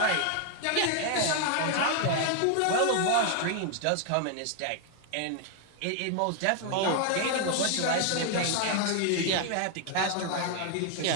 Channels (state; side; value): different; both; correlation 0.00